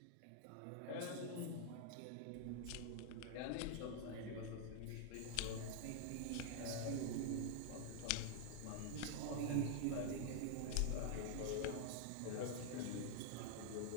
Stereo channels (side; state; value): both; different; correlation 0.00